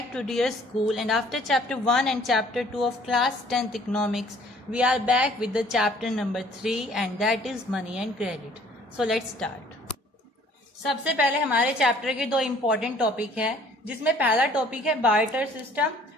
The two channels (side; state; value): both; normal; correlation 0.56